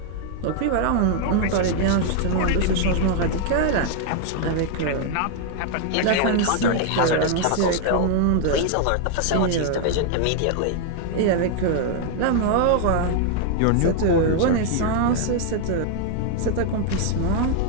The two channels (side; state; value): both; different; correlation 0.00